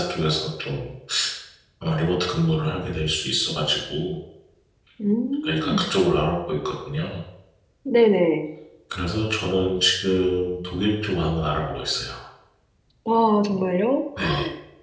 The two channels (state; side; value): identical; both; correlation 1.00